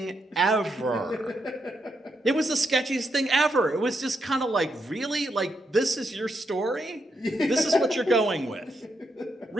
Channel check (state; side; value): normal; both; correlation 0.81